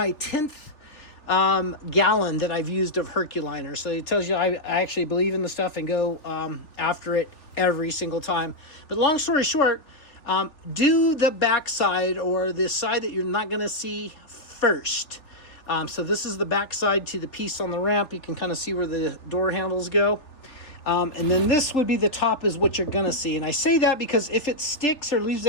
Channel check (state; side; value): late; right; 3.4 ms